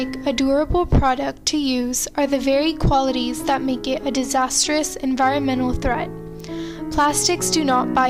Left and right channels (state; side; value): identical; both; correlation 1.00